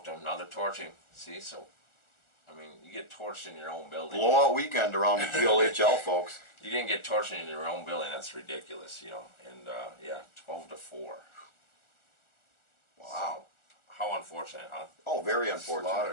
them. Now they're torching. See, so I mean, you get torched in your own building. Blowout weekend around the GLHL, folks. You didn't get torched in your own building. That's ridiculous, you know. And yeah, 12-4. Wow. So, how unfortunate, huh? Oh, very unfortunate.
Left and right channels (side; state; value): right; late; 1.4 ms